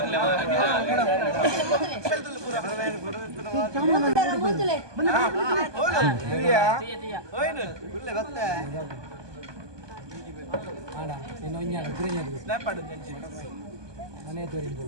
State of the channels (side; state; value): left; late; 1.2 ms